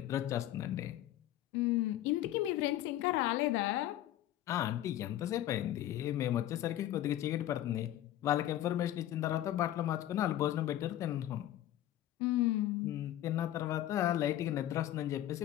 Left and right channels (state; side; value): quieter; right; 13.1 dB